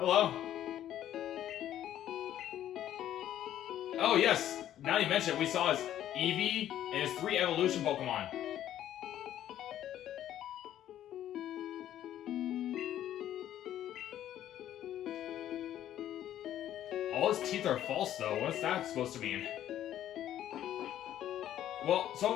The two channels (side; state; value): right; quieter; 11.7 dB